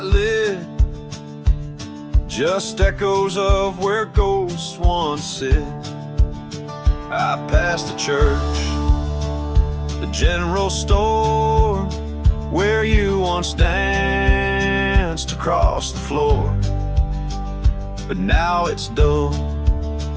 lit, just echoes of where ghosts once sit. I passed the church, the general store, where you once danced across the floor. But now it's dull,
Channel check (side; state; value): both; identical; correlation 1.00